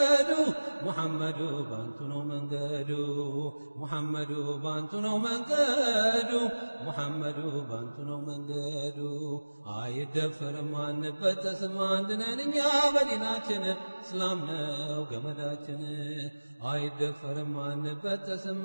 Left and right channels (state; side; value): inverted; both; correlation -1.00